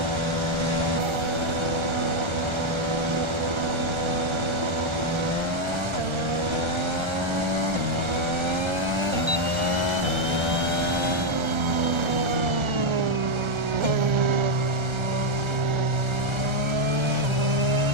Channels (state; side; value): late; left; 1.3 ms